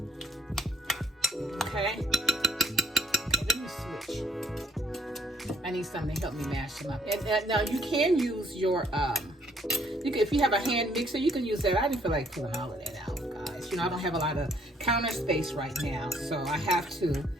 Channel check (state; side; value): normal; both; correlation 0.64